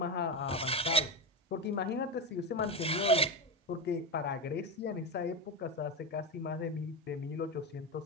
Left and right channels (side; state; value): both; normal; correlation 0.14